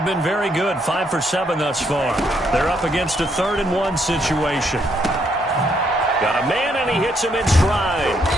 been very good, 5 for 7 thus far. They're up against a 3rd and 1 situation. Got a man, and he hits him in stride.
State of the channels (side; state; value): both; normal; correlation 0.73